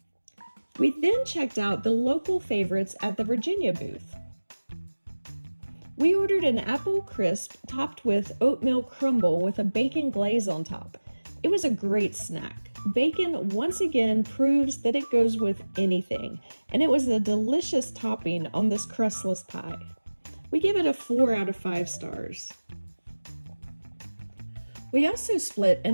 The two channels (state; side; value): inverted; both; correlation -1.00